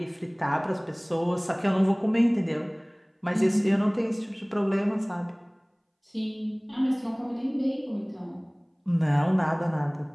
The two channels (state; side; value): identical; both; correlation 1.00